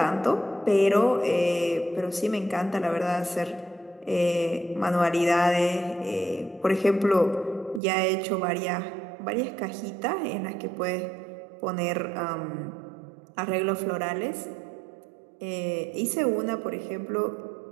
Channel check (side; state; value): left; drops out; at 7.8 s